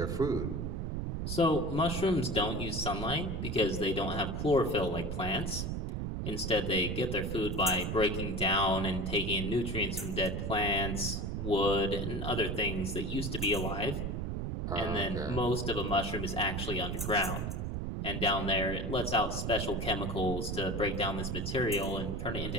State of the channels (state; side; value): noise; right; rumble, 2 dB below the sound